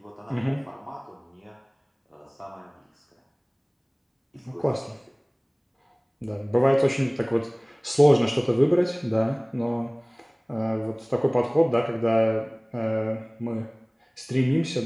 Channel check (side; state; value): both; identical; correlation 1.00